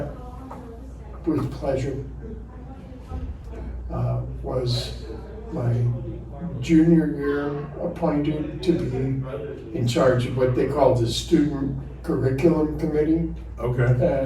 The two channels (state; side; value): identical; both; correlation 1.00